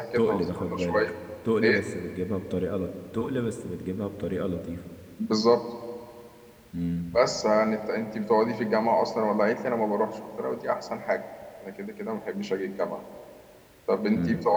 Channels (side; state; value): both; identical; correlation 1.00